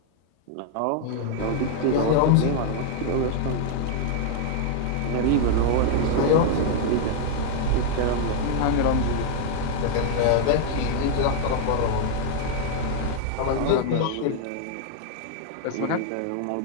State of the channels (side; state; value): both; different; correlation 0.00